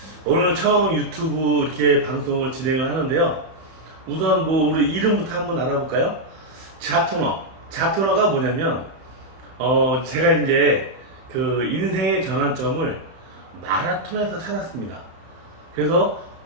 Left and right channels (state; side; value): late; left; 31 ms